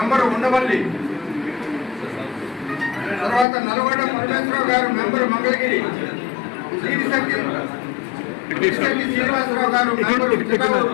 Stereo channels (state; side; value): drops out; right; at 3.5 s